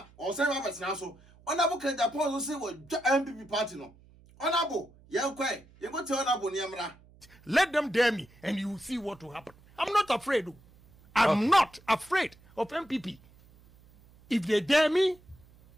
o say ba betena so Honorable Kenya Paul say we MPP party no Honorable yenkwe go tell Honorable niamra. Let them dare me and you will see what will happen. I'm not afraid. I'm not afraid of MPP. If they dare me,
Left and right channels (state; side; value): noise; right; hum, 27 dB below the sound